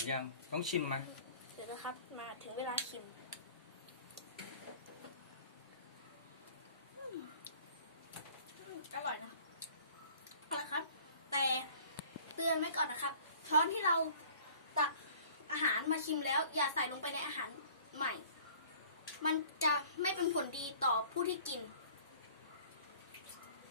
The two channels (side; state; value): both; inverted; correlation -0.50